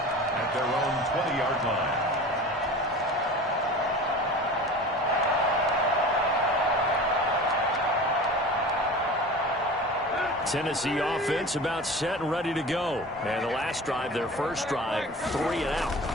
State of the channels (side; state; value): both; normal; correlation 0.37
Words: At their own 20-yard line. Tennessee offense about set and ready to go. And the last drive, their first drive, 3 and out.